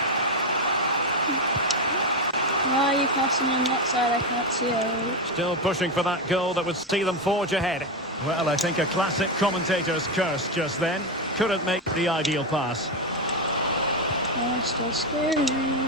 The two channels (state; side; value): normal; both; correlation 0.11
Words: Why are you passing on that side? I can't see it. Still pushing for that goal that would see them forge ahead. Well, I think a classic commentator's curse just then. Couldn't make the ideal pass. Oh, still scary.